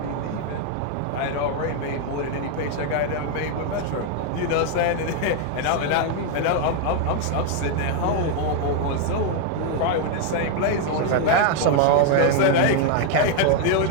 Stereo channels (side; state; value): both; different; correlation 0.00